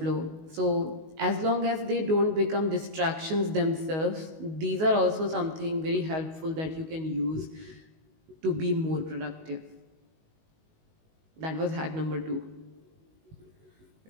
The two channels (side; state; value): left; late; 19 ms